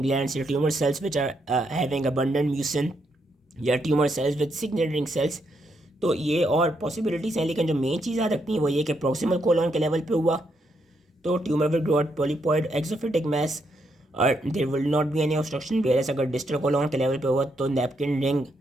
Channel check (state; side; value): normal; both; correlation 0.78